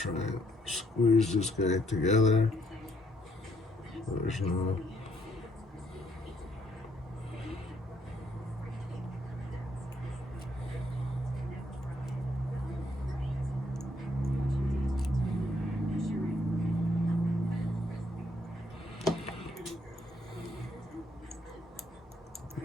and squeeze this guy together. There's no.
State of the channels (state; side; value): normal; both; correlation 0.71